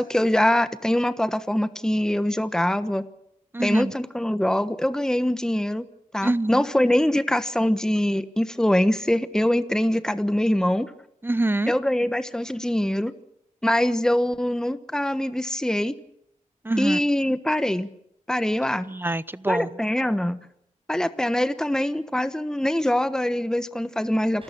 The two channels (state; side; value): normal; both; correlation 0.97